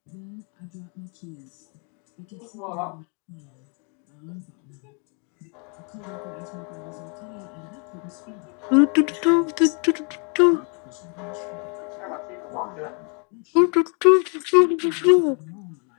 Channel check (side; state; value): right; quieter; 38.8 dB